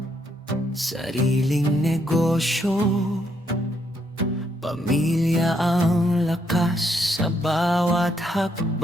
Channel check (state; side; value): normal; both; correlation 0.74